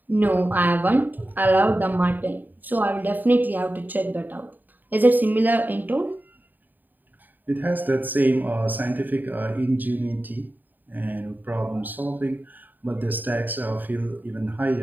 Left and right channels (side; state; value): left; late; 0.088 ms